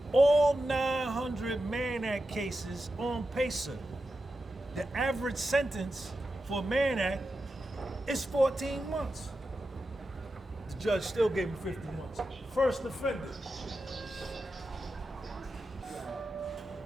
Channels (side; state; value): both; normal; correlation 0.90